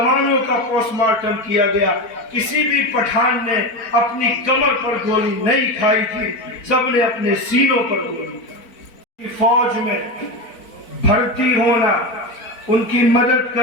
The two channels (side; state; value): right; late; 4.4 ms